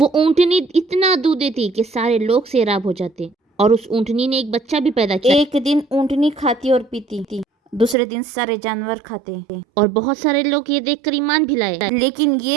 اونٹنی اتنا دودھ دیتی کہ سارے لوگ سیراب ہو جاتے، اور اس اونٹنی نے ایک بچہ بھی پیدا کیا۔ ایک دن اونٹنی کھاتی اور پیتی، دوسرے دن سارے جانور کھاتے، اور بہت سارے لوگ یہ دیکھ کر ایمان بھی لائے۔ لیکن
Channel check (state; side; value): drops out; left; at 8.0 s